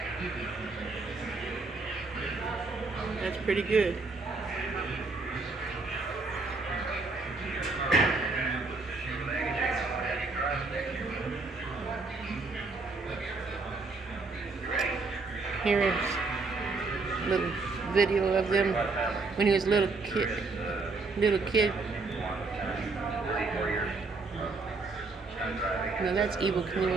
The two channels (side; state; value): left; quieter; 3.8 dB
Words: That's pretty good. Here is a little video of them when he was a little kid. Now that's Evel